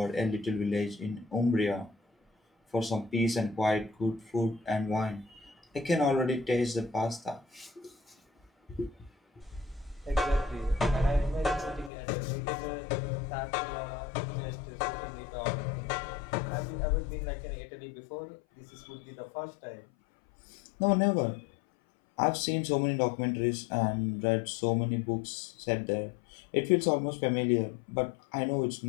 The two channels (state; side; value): drops out; right; at 11.9 s